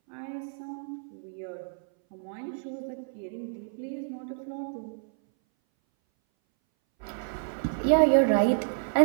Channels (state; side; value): silent; left; 59 dB below the other